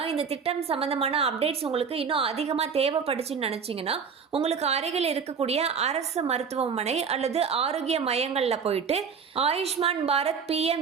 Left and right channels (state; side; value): quieter; left; 6.2 dB